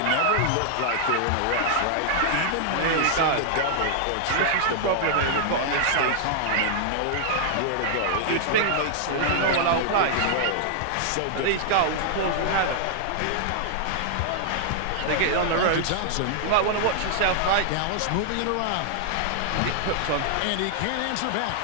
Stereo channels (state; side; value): different; both; correlation -0.01